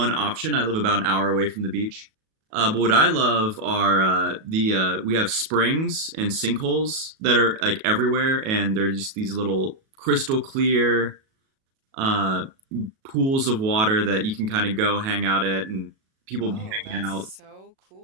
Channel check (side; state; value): left; late; 37 ms